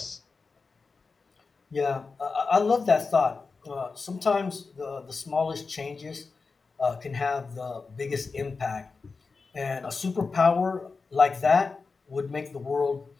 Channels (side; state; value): right; quieter; 4.4 dB